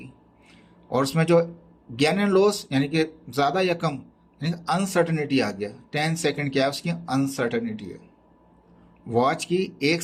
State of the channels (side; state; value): both; identical; correlation 1.00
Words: और उसमें जो गेन एंड लॉस यानी कि ज़्यादा या कम, यानी अनसर्टेनिटी आ गया। 10 सेकेंड क्या है, उसकी अनसर्टेनिटी है। वॉच की 1